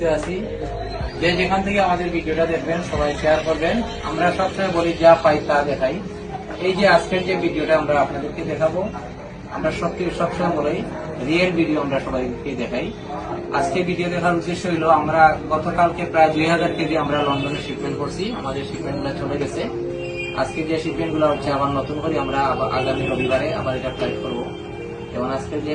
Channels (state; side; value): identical; both; correlation 1.00